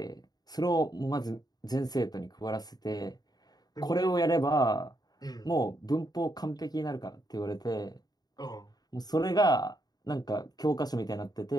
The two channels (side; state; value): right; late; 0.19 ms